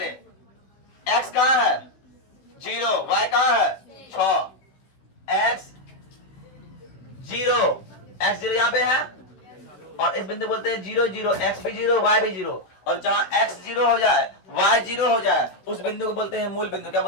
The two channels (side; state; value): right; late; 16 ms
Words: x कहाँ है? 0, y कहाँ है? 6, x 0, x 0 यहाँ पे है और इस बिंदु बोलते हैं 0 0, x भी 0 y भी 0, और जहां x 0 हो जाए y 0 हो जाए उस बिंदु को बोलते हैं मूल बिंदु। क्या